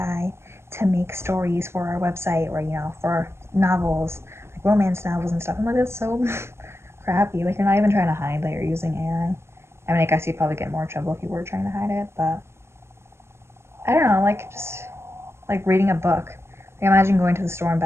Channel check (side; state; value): left; late; 0.12 ms